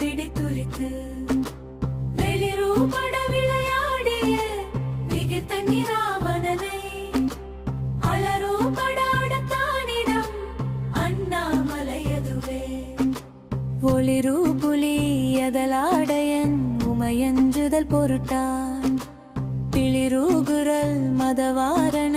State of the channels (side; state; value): both; identical; correlation 1.00